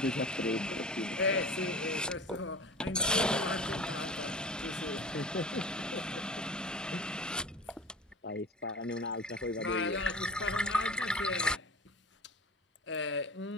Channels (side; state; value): both; normal; correlation 0.37